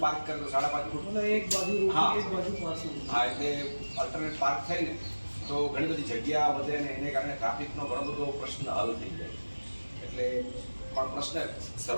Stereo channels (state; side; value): inverted; both; correlation -1.00